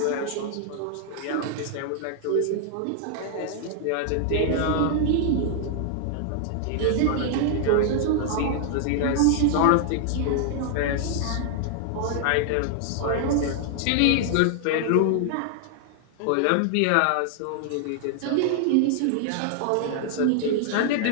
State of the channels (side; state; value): both; different; correlation 0.00